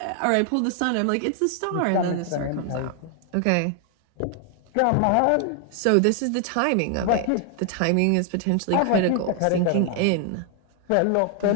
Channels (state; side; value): different; both; correlation 0.00